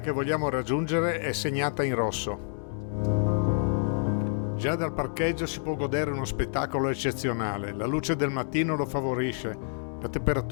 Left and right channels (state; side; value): silent; right; digital silence